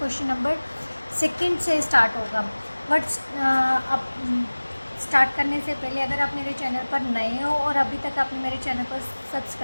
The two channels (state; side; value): inverted; both; correlation -1.00